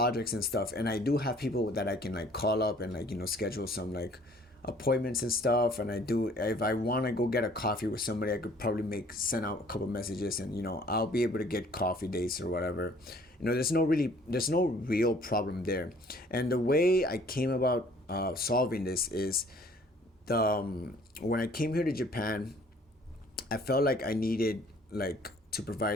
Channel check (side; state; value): both; normal; correlation 0.56